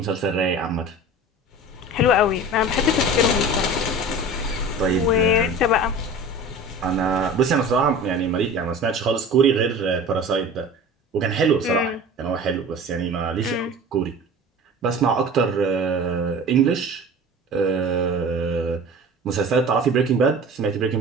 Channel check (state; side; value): normal; both; correlation 0.38